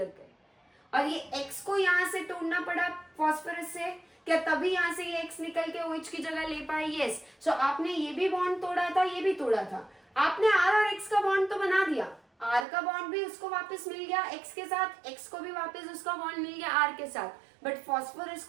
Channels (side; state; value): left; drops out; at 12.7 s